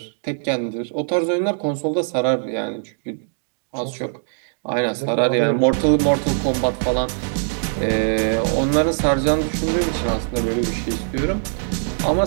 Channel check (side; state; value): left; silent; digital silence